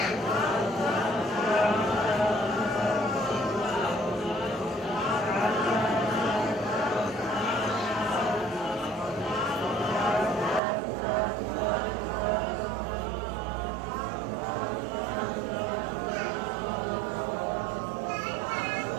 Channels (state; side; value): drops out; left; at 10.6 s